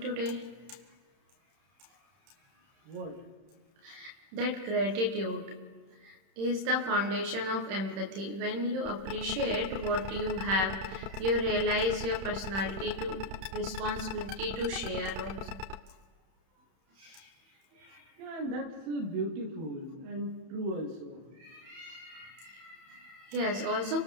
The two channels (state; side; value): late; left; 31 ms